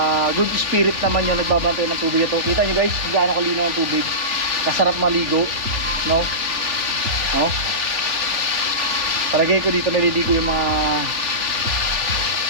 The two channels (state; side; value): late; left; 3.4 ms